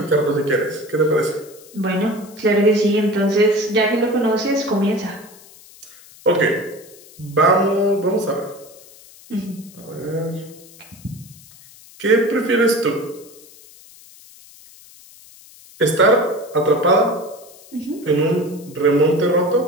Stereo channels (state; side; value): noise; left; hiss, 23 dB below the sound